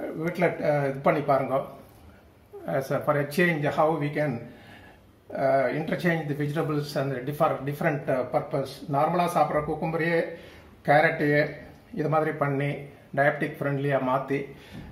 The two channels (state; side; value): identical; both; correlation 1.00